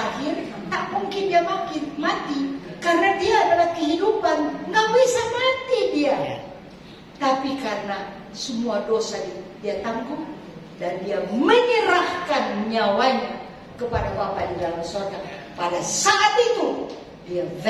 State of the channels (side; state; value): both; identical; correlation 1.00